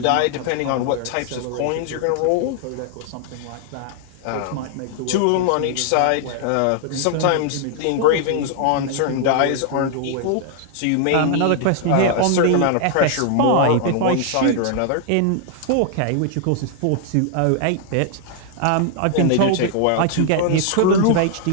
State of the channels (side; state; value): both; different; correlation 0.00